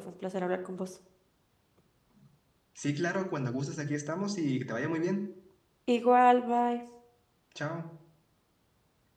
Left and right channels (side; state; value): both; identical; correlation 1.00